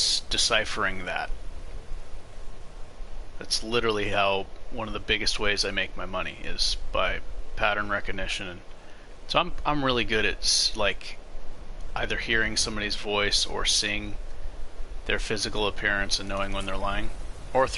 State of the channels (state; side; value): identical; both; correlation 1.00